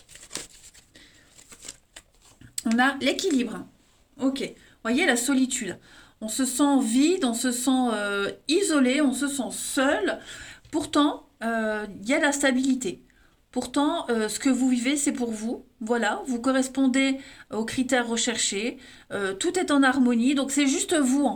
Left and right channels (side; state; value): both; identical; correlation 1.00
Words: On a l'équilibre. Ok. Voyez, la solitude. On se sent vide, on se sent isolé, on se sent seul. Pourtant, il y a la stabilité. Pourtant, ce que vous vivez, c'est pour vous. Voilà, vous correspondez aux critères recherchés. Tout est en harmonie. Donc, c'est juste vous,